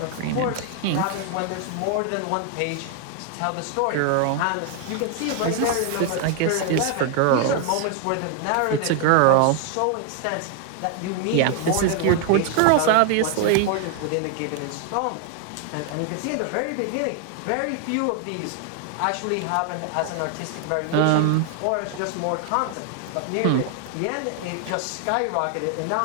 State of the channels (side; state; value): both; different; correlation 0.00